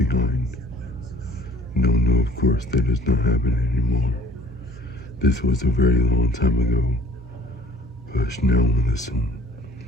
No, no, of course, that does not happen anymore. This was a very long time ago. Hush now and listen.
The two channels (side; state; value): both; normal; correlation 0.53